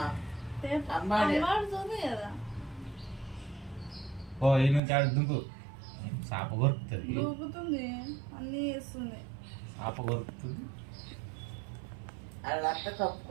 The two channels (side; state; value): left; drops out; at 4.8 s